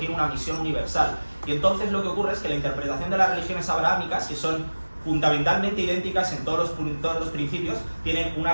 una misión universal. Y entonces lo que ocurre es que la interpretación de las religiones abrahámicas, que son fundamentalmente idénticas en todos los principios, tienen una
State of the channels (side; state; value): both; inverted; correlation -1.00